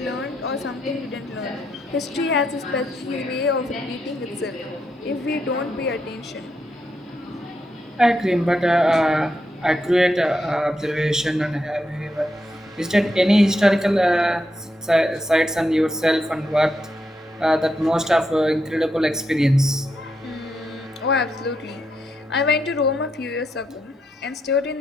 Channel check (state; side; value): normal; both; correlation 0.82